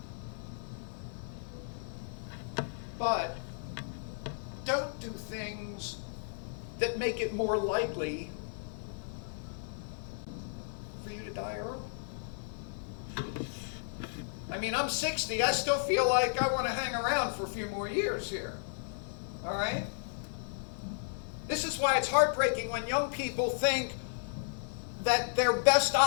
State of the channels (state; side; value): silent; right; 55 dB below the other